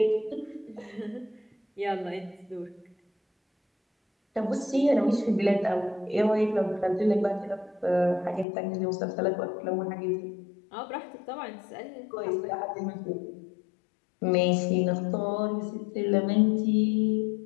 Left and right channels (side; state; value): right; drops out; at 8.5 s